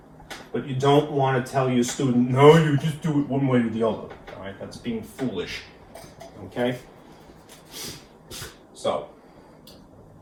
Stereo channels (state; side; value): identical; both; correlation 1.00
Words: But you don't want to tell your student, no, you just do it one way or the other, all right? That's being foolish, okay? So,